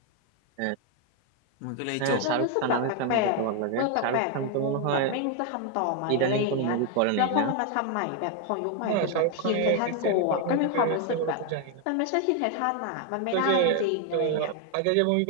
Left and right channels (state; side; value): different; both; correlation 0.01